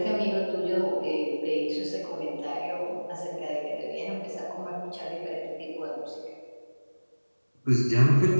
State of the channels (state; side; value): inverted; both; correlation -1.00